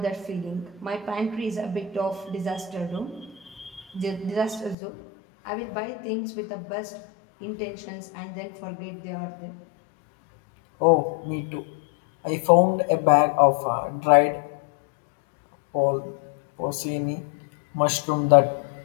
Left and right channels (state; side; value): drops out; right; at 4.8 s